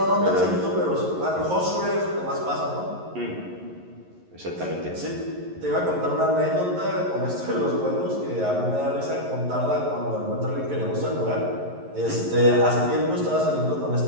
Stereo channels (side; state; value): left; late; 11 ms